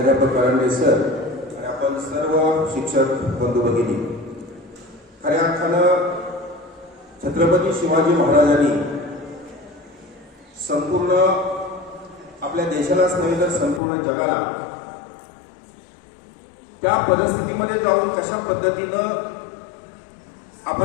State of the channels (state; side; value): drops out; right; at 13.8 s